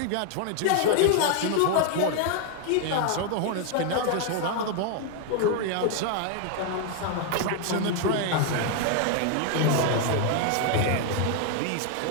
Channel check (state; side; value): different; both; correlation 0.00